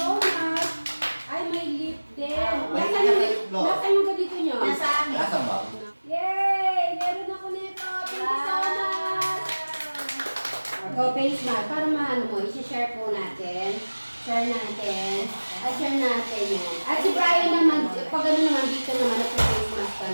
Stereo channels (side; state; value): both; inverted; correlation -1.00